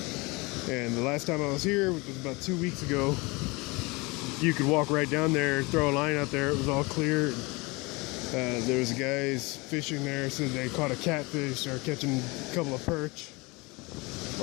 And the last time I was here, which was about 2 weeks ago, you could walk right down there, throw a line out there, it was all clear. There was guys fishing there, said they caught a catfish or catching a couple of perch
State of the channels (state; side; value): quieter; right; 25.5 dB